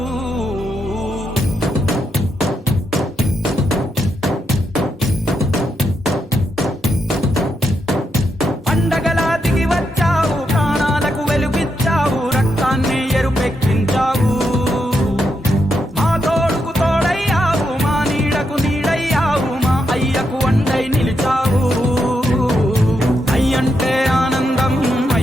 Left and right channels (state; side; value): normal; both; correlation 0.82